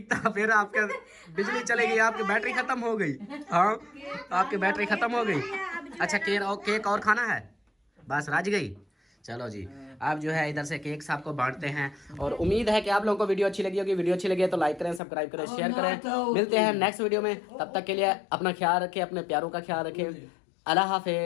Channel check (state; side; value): drops out; right; at 15.0 s